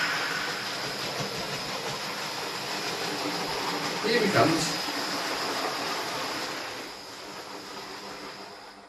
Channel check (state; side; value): identical; both; correlation 1.00